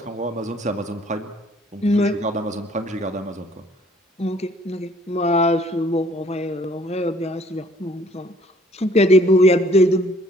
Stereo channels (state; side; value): normal; both; correlation 0.58